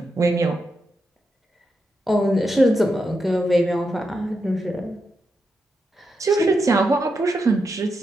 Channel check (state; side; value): normal; both; correlation 0.85